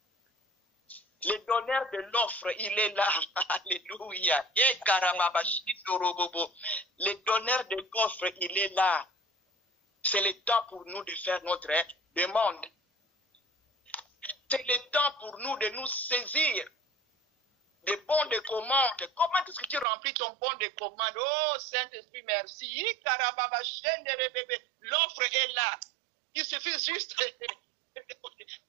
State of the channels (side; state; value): left; drops out; at 19.9 s